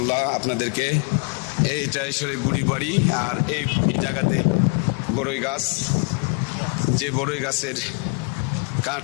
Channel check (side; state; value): right; quieter; 33.6 dB